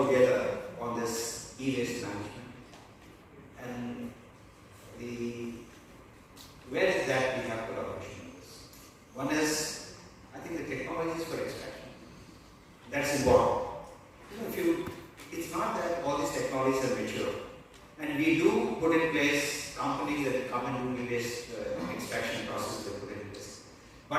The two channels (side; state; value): both; identical; correlation 1.00